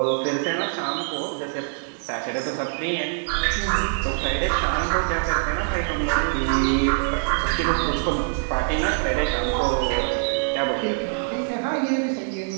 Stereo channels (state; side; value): silent; left; 62 dB below the other